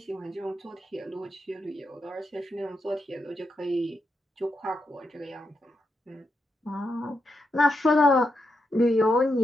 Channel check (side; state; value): both; normal; correlation 0.84